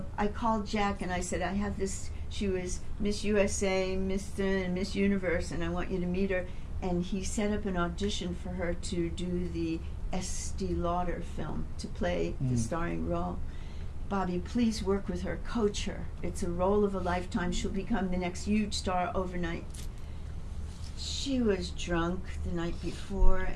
I called Jack and I said, I have this. She was Miss USA, Mr. and Miss Universe, and I want you to meet her. And he set up an audition for her to do the Estee Lauder film, to play the starring role. Bobbie, please work with her, coach her. It's a role of a lifetime. She'll become the next huge star overnight. She was drunk the night before,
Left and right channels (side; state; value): both; identical; correlation 1.00